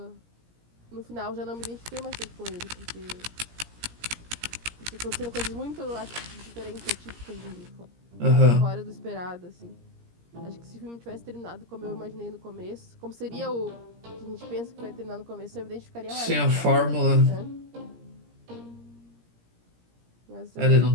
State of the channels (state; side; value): late; left; 17 ms